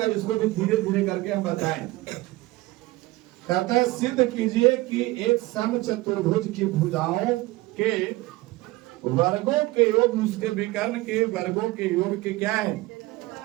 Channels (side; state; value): left; quieter; 19.8 dB